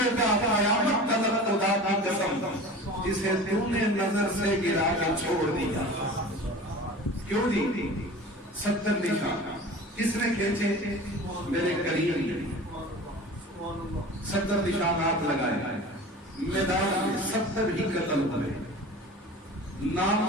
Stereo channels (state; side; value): normal; both; correlation 0.38